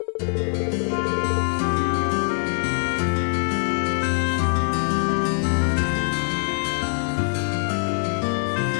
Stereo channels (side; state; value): right; silent; digital silence